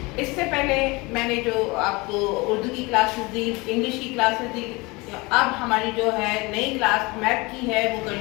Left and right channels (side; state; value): right; quieter; 24.7 dB